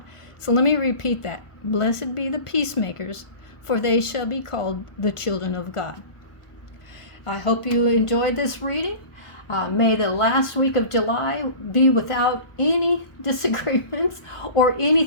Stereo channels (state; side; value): late; right; 1.4 ms